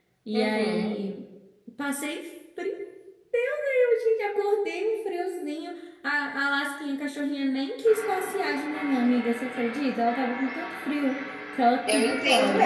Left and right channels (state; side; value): identical; both; correlation 1.00